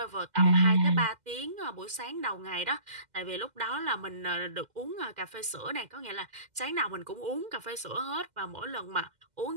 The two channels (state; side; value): late; left; 2.0 ms